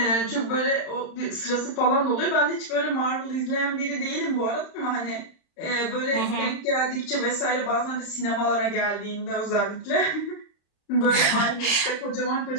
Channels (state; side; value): late; right; 35 ms